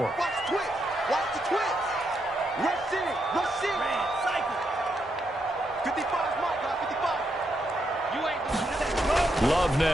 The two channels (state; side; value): normal; both; correlation 0.80